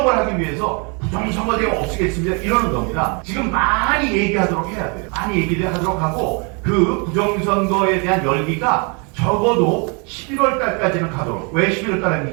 하기 위해서 부정선거제가 없애겠습니다 이러는 겁니다. 지금 많이 얘기하도록 해야 돼요. 많이 얘기를 하도록 하고 그 부정선거에 대한 열기가 적어도 11월 달까지는 가도록. 왜 11월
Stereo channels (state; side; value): quieter; left; 33.7 dB